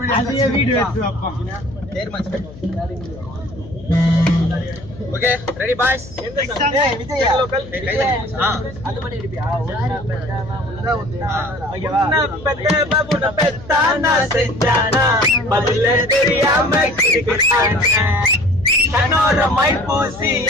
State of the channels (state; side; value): noise; left; hum, 17 dB below the sound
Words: வீடு okay ready boys Vijay local அது பண்ணி அடிப்பியா ஓகேவா பெத்த பாபுன பெத்தானா செஞ்சானா பதில தெரியாம கிடக்குறானே கண்ணோர மை பூசி